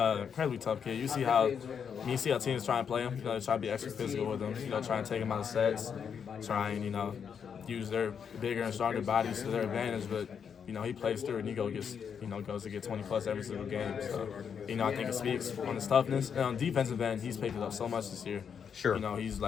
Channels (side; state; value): right; quieter; 7.2 dB